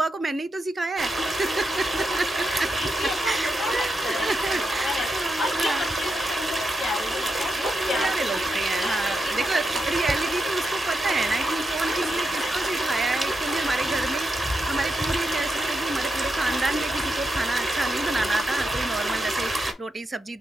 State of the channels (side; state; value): both; normal; correlation 0.85